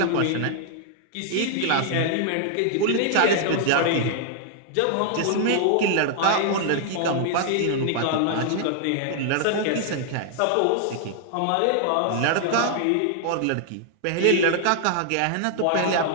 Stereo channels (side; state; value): both; different; correlation 0.00